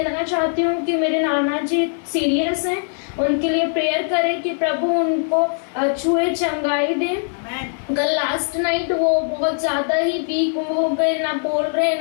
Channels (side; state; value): right; silent; digital silence